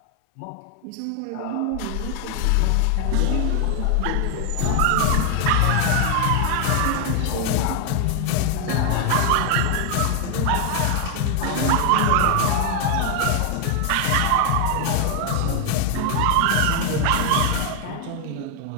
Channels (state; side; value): different; both; correlation 0.00